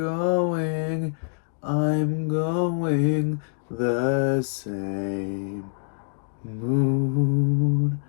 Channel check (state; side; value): silent; right; digital silence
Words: I'm going the same. Moon,